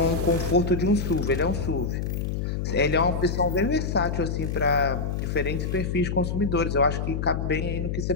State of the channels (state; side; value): noise; left; hum, 2 dB below the sound